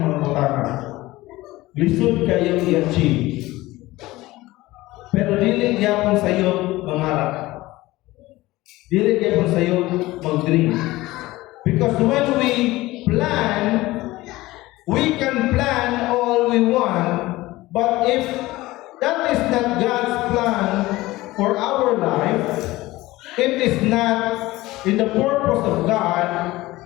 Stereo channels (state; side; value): quieter; right; 18.6 dB